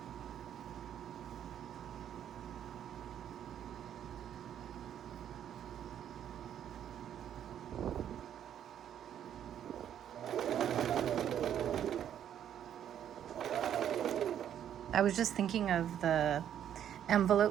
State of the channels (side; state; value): left; quieter; 9.9 dB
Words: I was just thinking of the